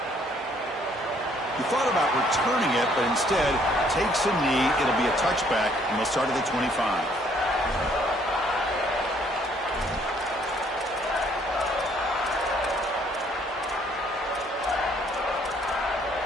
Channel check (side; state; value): both; normal; correlation 0.64